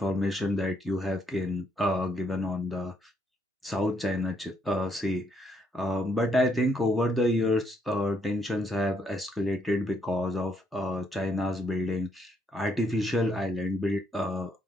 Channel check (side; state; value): both; normal; correlation 0.73